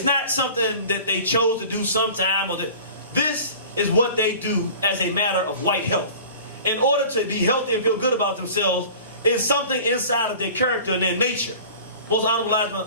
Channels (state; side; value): inverted; both; correlation -0.42